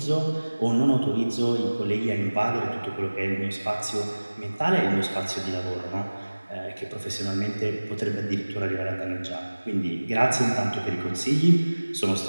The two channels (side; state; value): both; inverted; correlation -1.00